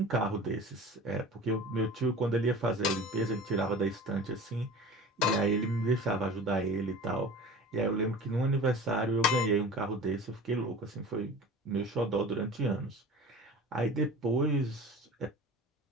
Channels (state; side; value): normal; both; correlation 0.39